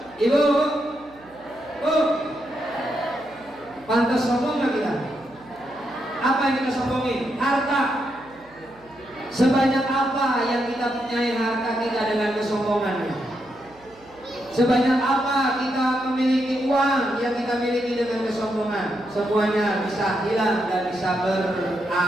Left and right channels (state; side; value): noise; right; hum, 28 dB below the sound